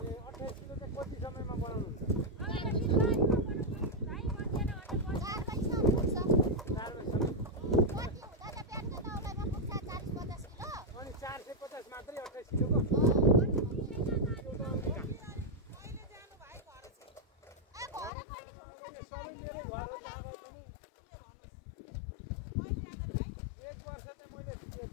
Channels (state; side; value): drops out; right; at 18.1 s